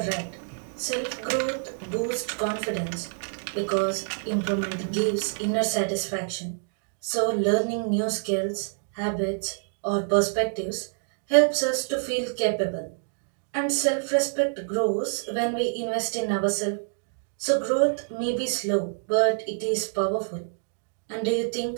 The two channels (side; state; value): left; silent; digital silence